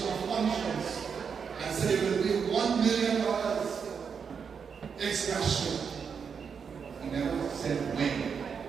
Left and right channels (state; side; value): quieter; left; 6.4 dB